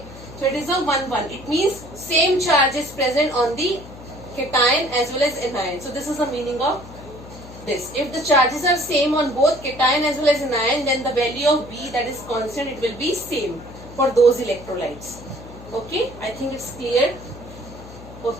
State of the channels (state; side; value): noise; left; hum, 16 dB below the sound